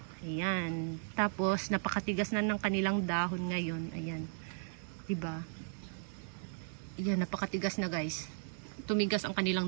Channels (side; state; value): left; silent; 54 dB below the other